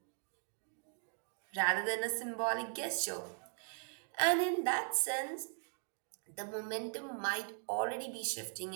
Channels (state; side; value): silent; left; 52 dB below the other